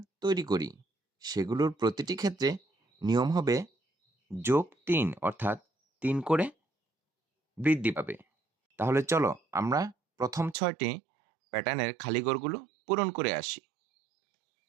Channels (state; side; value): drops out; left; at 10.6 s